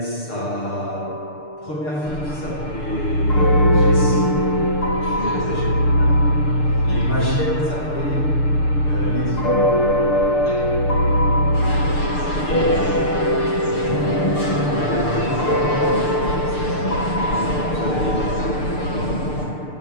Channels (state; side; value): late; right; 6.7 ms